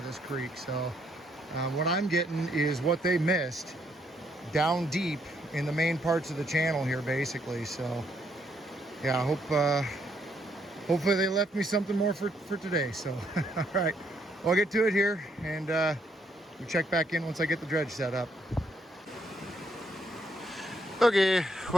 this creek. So what I'm getting is what they missed down deep in the main parts of the channel here, basically. So yeah, I hope hopefully they left me something more for today. So all right, well, I'll get to it here, and we'll check back in once I get the dredge set up. Okay,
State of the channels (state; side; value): normal; both; correlation 0.73